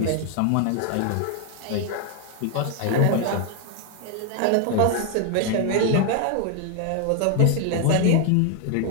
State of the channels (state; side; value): different; both; correlation 0.00